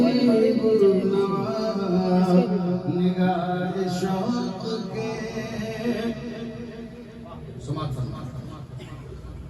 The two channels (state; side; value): identical; both; correlation 1.00